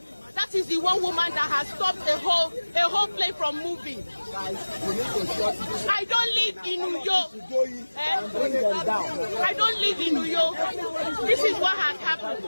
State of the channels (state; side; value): inverted; both; correlation -1.00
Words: That is the one woman that has stopped a whole plane from moving. I don't live in New York. I don't live in New York. This is what has happened.